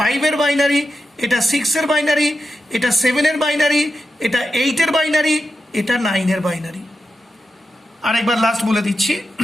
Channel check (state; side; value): normal; both; correlation 0.90